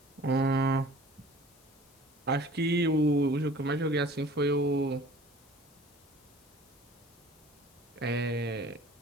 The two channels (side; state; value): left; noise; hiss, 29 dB below the sound